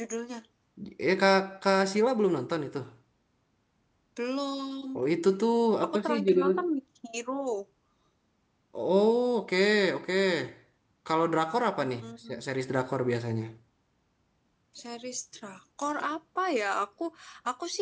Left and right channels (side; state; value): both; identical; correlation 1.00